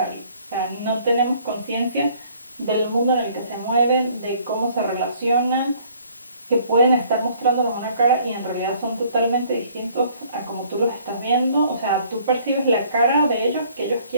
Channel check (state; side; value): inverted; both; correlation -0.59